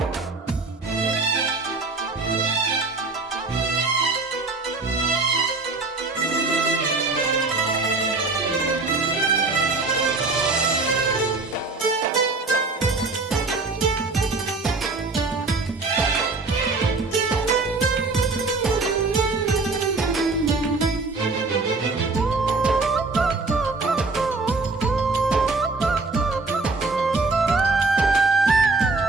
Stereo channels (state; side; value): quieter; left; 3.7 dB